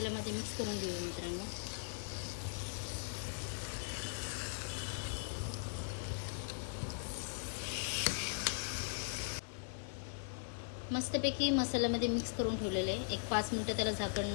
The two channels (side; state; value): right; silent; 51 dB below the other